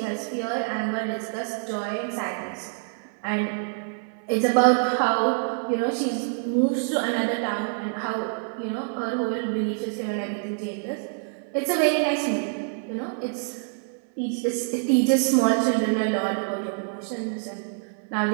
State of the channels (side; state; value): left; silent; 61 dB below the other